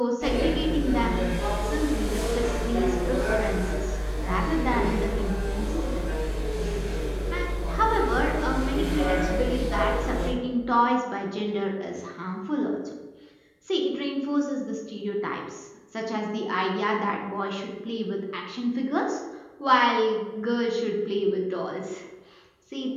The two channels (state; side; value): identical; both; correlation 1.00